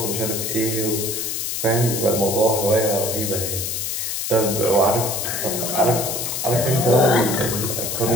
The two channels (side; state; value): left; noise; hiss, 2 dB below the sound